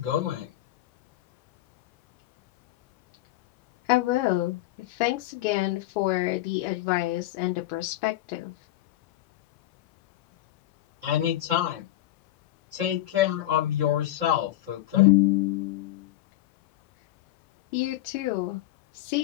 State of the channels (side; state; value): right; quieter; 14.7 dB